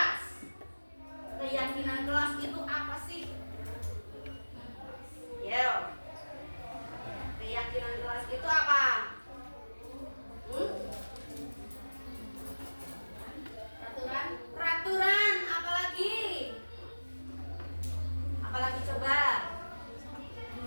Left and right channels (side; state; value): both; inverted; correlation -1.00